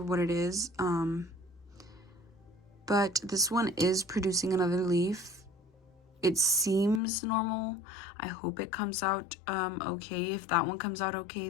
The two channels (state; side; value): drops out; right; at 7.0 s